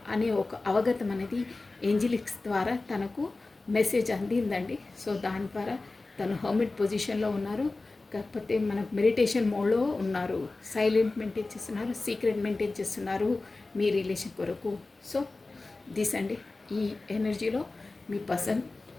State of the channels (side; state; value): right; quieter; 3.4 dB